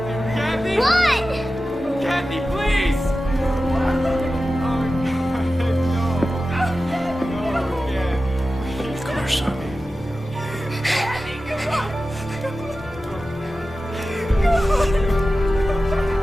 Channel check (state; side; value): normal; both; correlation 0.94